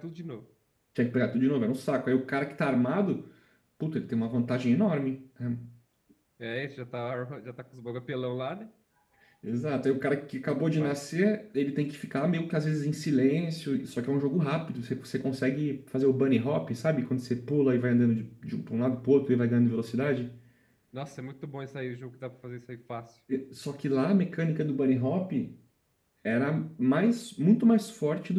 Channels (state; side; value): identical; both; correlation 1.00